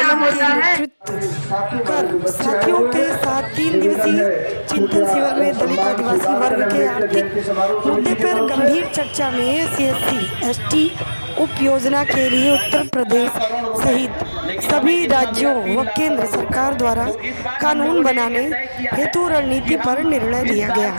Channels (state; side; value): inverted; both; correlation -1.00